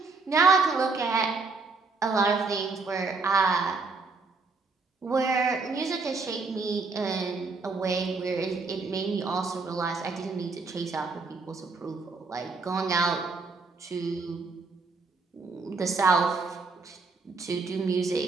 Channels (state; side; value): quieter; left; 4.1 dB